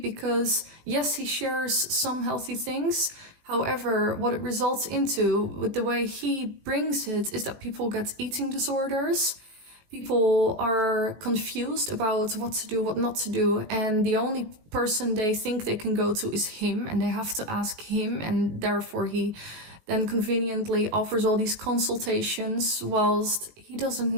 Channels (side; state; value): left; late; 18 ms